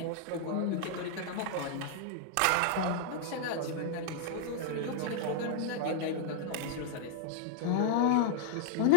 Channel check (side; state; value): both; different; correlation -0.01